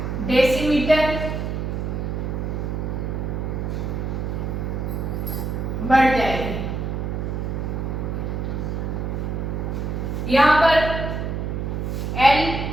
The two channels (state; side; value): noise; right; hum, 2 dB below the sound